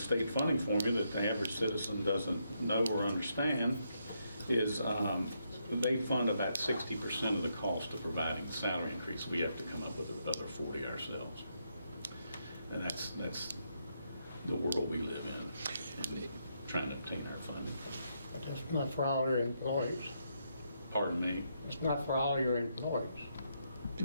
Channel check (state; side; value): inverted; both; correlation -0.79